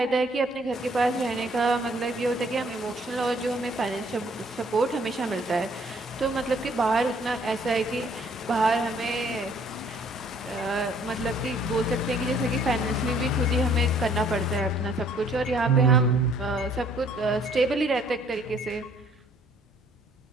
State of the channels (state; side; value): normal; both; correlation 0.61